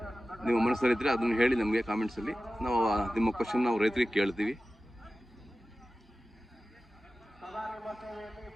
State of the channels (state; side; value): normal; both; correlation 0.95